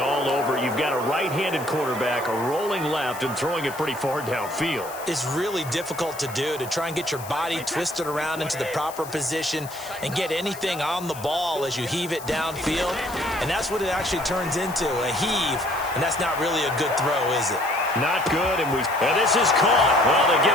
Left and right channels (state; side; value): noise; left; hiss, 15 dB below the sound